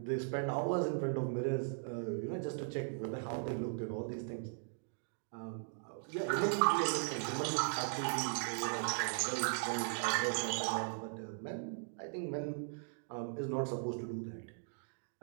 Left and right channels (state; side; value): silent; left; digital silence